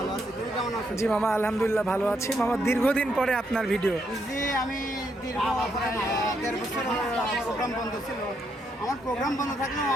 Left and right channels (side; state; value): both; normal; correlation 0.77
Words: আছি। তুমি কেমন আছো? জি মামা আলহামদুলিল্লাহ ভালো আছি। মামা দীর্ঘদিন পরে আপনার ভিডিও। জি আমি দীর্ঘ 1.5 বছর প্রোগ্রাম বন্ধ ছিল। আমার প্রোগ্রাম বন্ধ থাকলেও